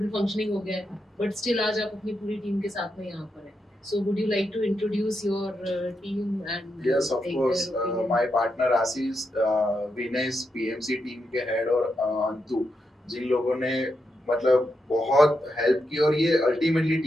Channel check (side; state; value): both; normal; correlation 0.84